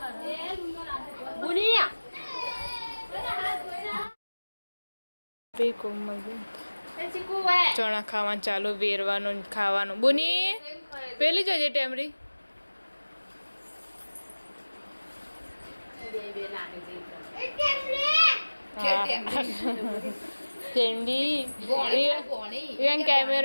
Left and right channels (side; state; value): both; inverted; correlation -1.00